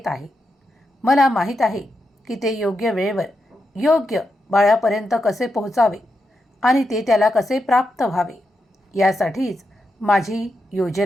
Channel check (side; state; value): both; normal; correlation 0.86